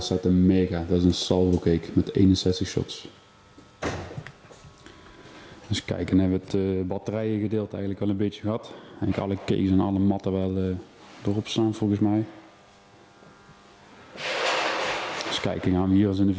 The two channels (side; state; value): both; identical; correlation 1.00